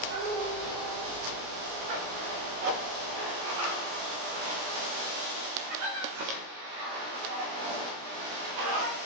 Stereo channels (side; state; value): left; late; 17 ms